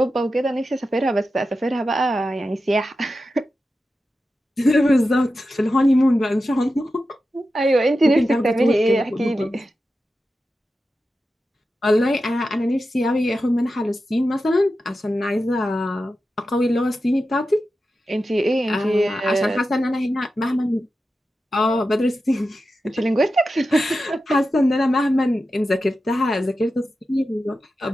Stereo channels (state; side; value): normal; both; correlation 0.91